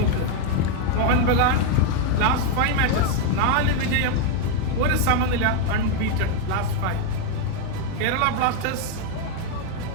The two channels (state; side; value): different; both; correlation 0.01